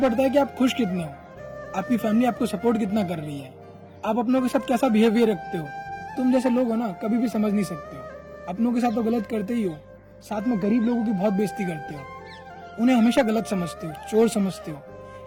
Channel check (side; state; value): both; identical; correlation 1.00